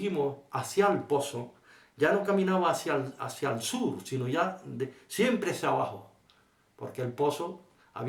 hacia el pozo, ya no caminaba hacia el sur, sino ya siempre hacia abajo, porque el pozo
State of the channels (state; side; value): identical; both; correlation 1.00